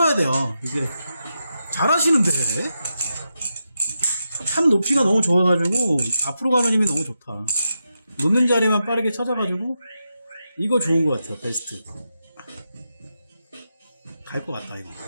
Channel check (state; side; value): inverted; both; correlation -0.87